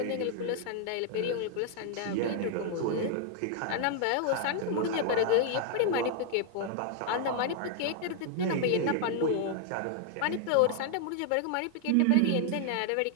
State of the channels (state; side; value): different; both; correlation 0.00